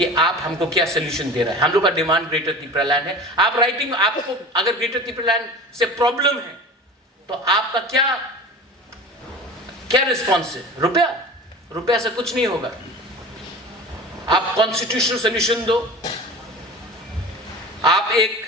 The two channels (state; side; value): normal; both; correlation 0.36